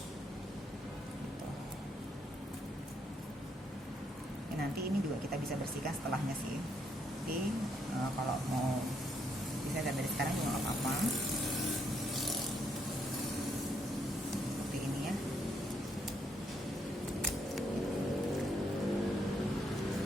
Gitu. Nanti ini juga kita bisa bersihkan setelahnya sih. Jadi kalau mau bisa dari sekarang juga nggak apa-apa. Seperti ini ya.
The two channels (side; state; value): both; normal; correlation 0.74